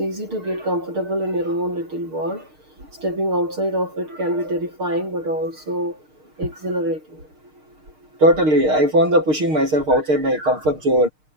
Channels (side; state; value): left; late; 6.6 ms